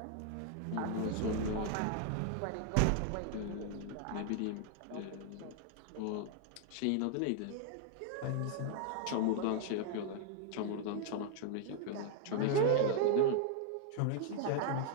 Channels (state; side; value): different; both; correlation 0.00